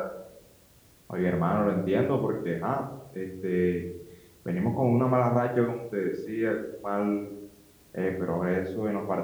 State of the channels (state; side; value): identical; both; correlation 1.00